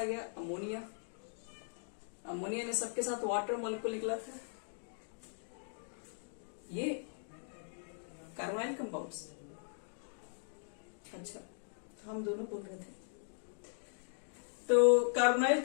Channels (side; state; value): right; silent; digital silence